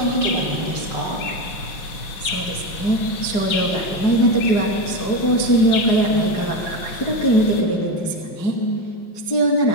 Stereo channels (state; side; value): late; right; 5.5 ms